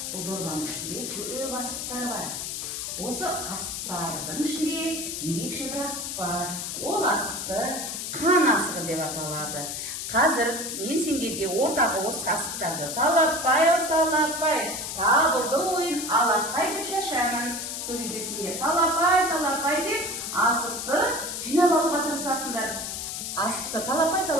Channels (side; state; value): left; noise; hiss, 5 dB below the sound